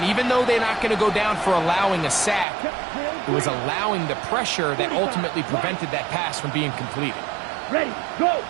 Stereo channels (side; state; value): left; drops out; at 2.5 s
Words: even though they're not going to go down for allowing a sack, it was allowing the pressure that ultimately prevented that pass from being completed. Ready. Go.